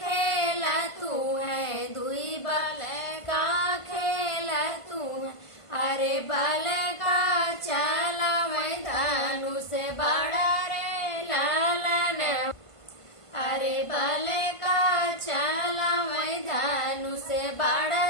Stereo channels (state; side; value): late; right; 1.5 ms